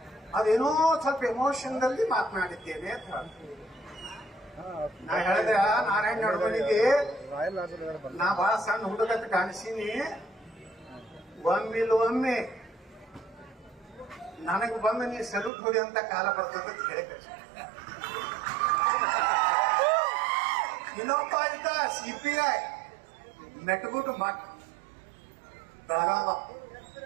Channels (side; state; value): left; drops out; at 15.5 s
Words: ಅದೇನೋ ಸ್ವಲ್ಪ ಎಮೋಷನ್ದಲ್ಲಿ ಮಾತನಾಡಿದ್ದೇನೆ ಅಂತ. ನಾ ಹೇಳಿದೆ, ನಾರಾಯಣ ನಡುಮನಿಗೆ ನಾ ಬಹಳ ಸಣ್ಣ ಹುಡುಗಂತ ಕಾಣಿಸೀನಿ, ಒಮ್ಮೆ ನನಗೆ ಬಂದು ನೀ ಸಲ್ಯೂಟ್ ಹೊಡಿ ಅಂತ ಕಾಲ ಬರ್ತದ ಅಂತ ಹೇಳಿ ಕಳಿಸಿ. ಇನ್ನೊಬ್ಬ ಇದ್ದ CPI ಮೆಟ್ಗುಟ್ಟು ಮಠ್ ಬೆಳಗಾವ,